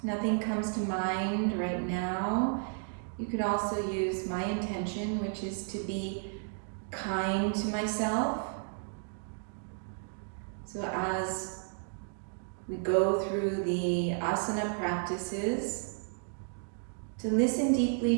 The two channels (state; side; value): silent; left; 56 dB below the other